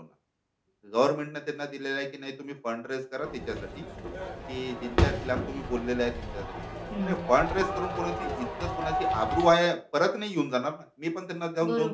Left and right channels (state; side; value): identical; both; correlation 1.00